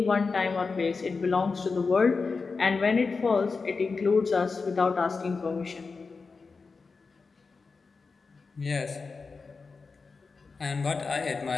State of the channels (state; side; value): quieter; right; 4.5 dB